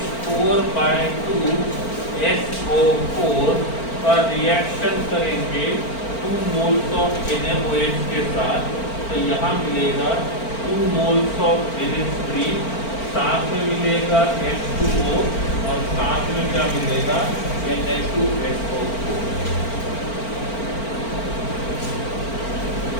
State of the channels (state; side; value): late; right; 4.4 ms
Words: का रिएक्शन करेंगे 2 मोल्स ऑफ NaOH के साथ, तो यहाँ मिलेगा 2 मोल्स ऑफ NH3, साथ में मिलेगा H2O, और साथ में क्या मिलेगा, Na2SO4।